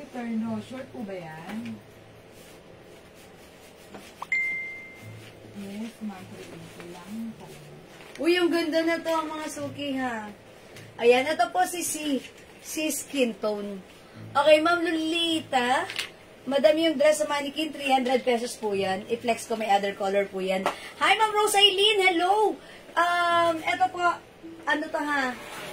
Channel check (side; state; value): both; identical; correlation 1.00